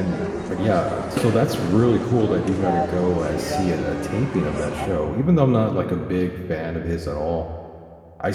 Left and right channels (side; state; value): both; identical; correlation 1.00